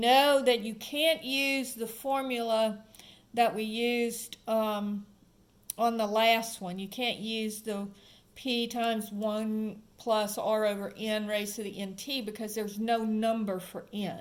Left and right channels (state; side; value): identical; both; correlation 1.00